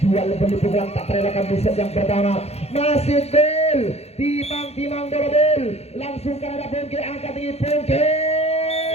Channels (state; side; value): late; right; 0.30 ms